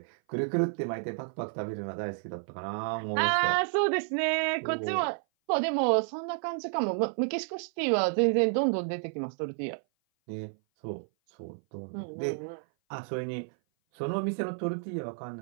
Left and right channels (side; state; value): left; silent; 56 dB below the other